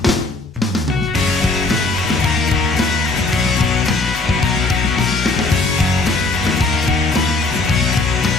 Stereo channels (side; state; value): right; quieter; 3.2 dB